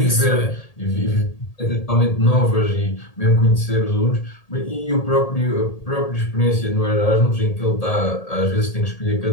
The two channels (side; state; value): right; late; 1.8 ms